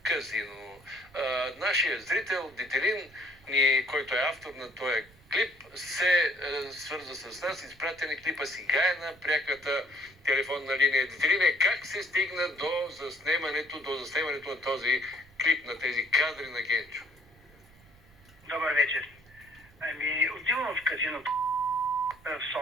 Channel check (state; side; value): noise; right; rumble, 28 dB below the sound